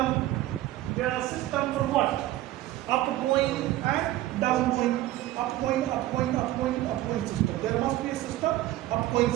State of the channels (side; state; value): left; quieter; 15.3 dB